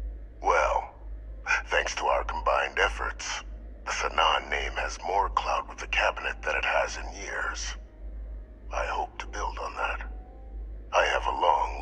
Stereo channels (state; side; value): identical; both; correlation 1.00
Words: Well, thanks to our combined efforts, the Sanan name has more clout with the cabinet than it has in years. I hope to build on that. I have a long